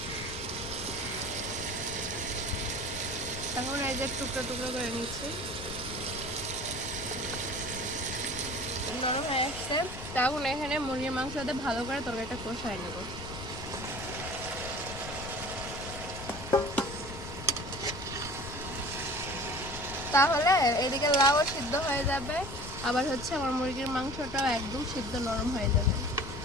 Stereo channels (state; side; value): noise; left; rumble, 11 dB below the sound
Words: এখন এই যে টুকরো টুকরো করে নিচ্ছি, নরম হয়ে আসছে। তখন এখানে মুরগির মাংস দিয়ে ভালো করে তরকারিটা কষাই নেব। তাহলে এদিকে লাউ সিদ্ধ হয়ে যাবে, আবার হচ্ছে আমার মুরগির মাংসটাও একদম সিদ্ধ নরম হয়ে যাবে।